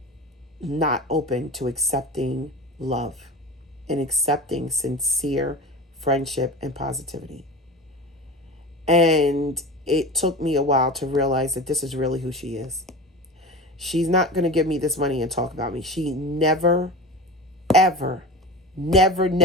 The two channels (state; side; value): normal; both; correlation 0.31